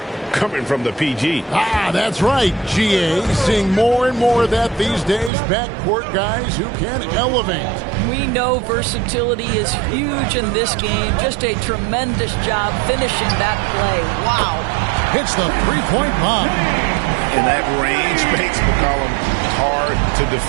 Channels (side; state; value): left; drops out; at 5.3 s